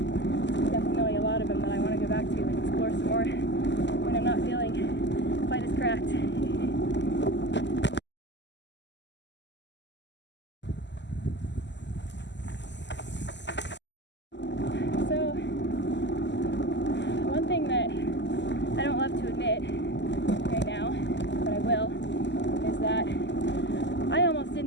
Definitely a lot of them that I want to go back to and explore some more when I'm not feeling quite as cracked. So, one thing that I don't love to admit right now, but I will, is that I almost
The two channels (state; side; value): late; right; 0.51 ms